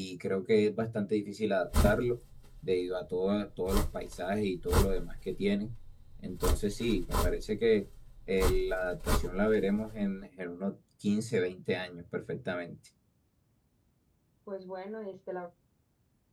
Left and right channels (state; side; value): identical; both; correlation 1.00